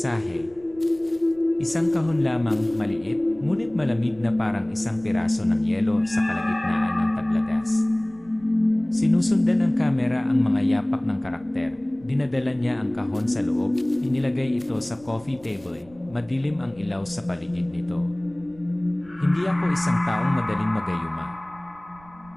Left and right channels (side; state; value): right; noise; rumble, 26 dB below the sound